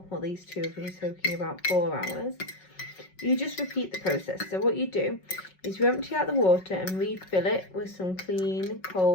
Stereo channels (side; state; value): right; late; 5.4 ms